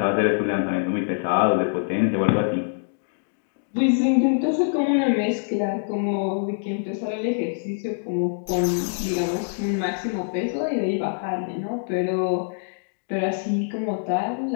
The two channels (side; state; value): right; silent; digital silence